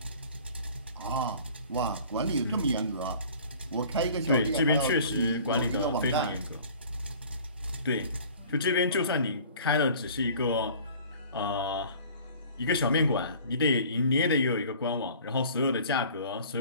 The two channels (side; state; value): both; inverted; correlation -0.48